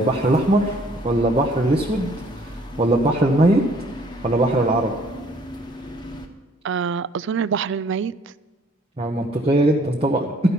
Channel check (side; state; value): both; normal; correlation 0.60